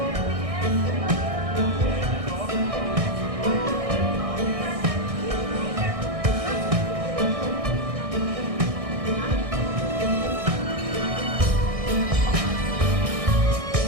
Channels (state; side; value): late; left; 1.6 ms